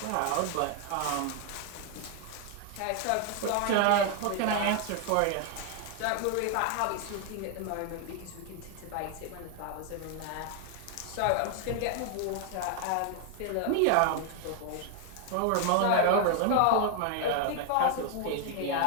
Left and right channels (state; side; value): different; both; correlation 0.00